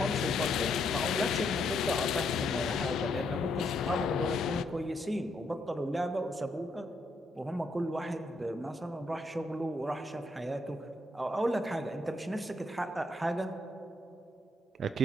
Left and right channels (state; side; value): normal; both; correlation 0.76